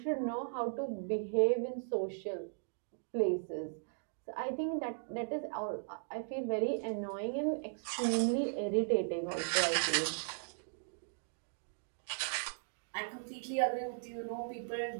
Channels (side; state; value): left; silent; digital silence